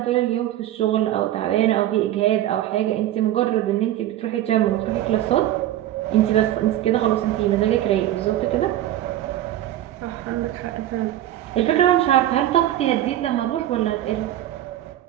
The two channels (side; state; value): left; quieter; 13.1 dB